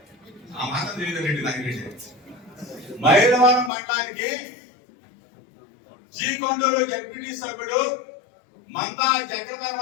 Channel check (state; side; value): drops out; right; at 3.7 s